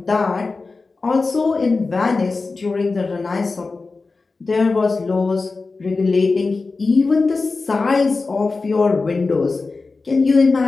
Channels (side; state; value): right; quieter; 3.9 dB